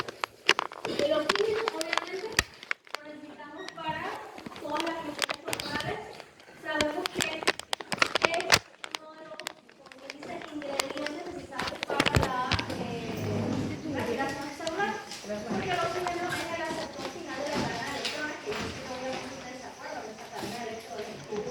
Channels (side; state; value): both; identical; correlation 1.00